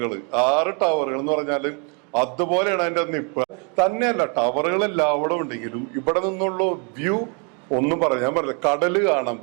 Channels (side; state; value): left; quieter; 35.4 dB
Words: എന്ന് പറഞ്ഞാല് അതുപോലെയാണ് അതിന്റെ നിപ്പ്. തന്നെയല്ല, ടവറുകൾ എല്ലാവരും ഉണ്ടെങ്കിലും ഇവിടെ നിന്നുള്ള വ്യൂ ഒന്നും പറയാൻ പറ്റില്ല. കടല് കാണാം,